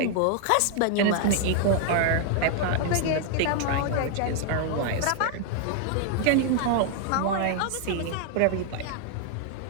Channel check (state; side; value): different; both; correlation 0.00